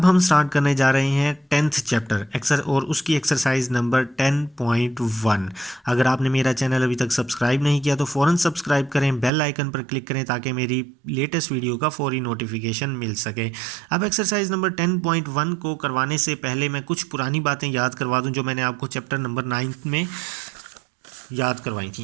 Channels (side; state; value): left; drops out; at 9.3 s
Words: हम स्टार्ट करने जा रहे हैं 10th चैप्टर और उसकी एक्सरसाइज नंबर 10.1। अगर आपने मेरा चैनल अभी तक सब्सक्राइब नहीं किया तो फ़ौरन सब्सक्राइब करें, बेल आइकन पर क्लिक करें ताकि मेरी लेटेस्ट वीडियो का फौरी नोटिफिकेशन मिल सके। अब एक्सरसाइज नंबर 10.1 को करवाने से पहले मैं कुछ पुरानी बातें याद करवा दूं जो मैंने आपको चैप्टर नंबर 9 में याद करवाई